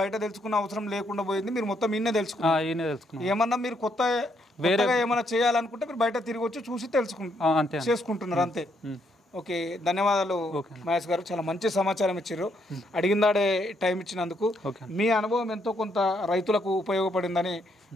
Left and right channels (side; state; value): both; normal; correlation 0.74